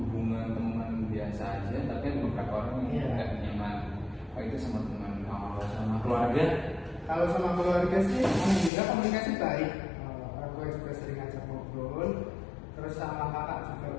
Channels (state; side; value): drops out; right; at 8.7 s